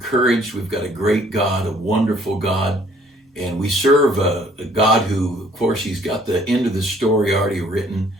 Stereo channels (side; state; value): both; normal; correlation 0.60